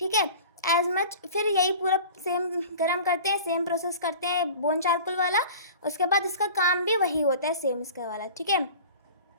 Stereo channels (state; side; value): inverted; both; correlation -0.40